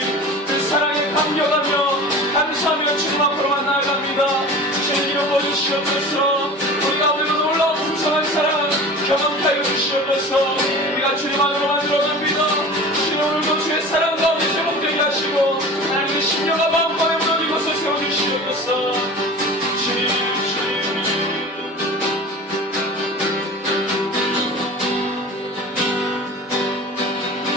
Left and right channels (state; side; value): normal; both; correlation 0.36